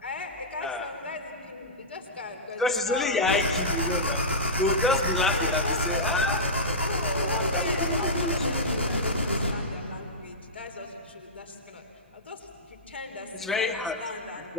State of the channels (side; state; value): both; normal; correlation -0.14